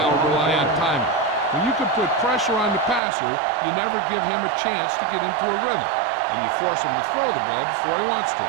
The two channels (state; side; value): drops out; left; at 3.0 s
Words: rely on timing. When you can put pressure on the passer, you never give him a chance to get into a rhythm. And you force him to throw the ball before he wants to.